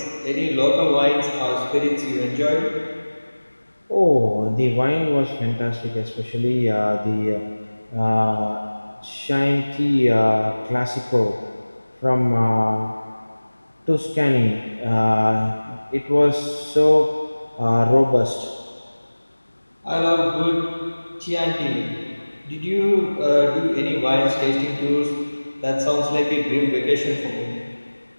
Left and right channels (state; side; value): inverted; both; correlation -1.00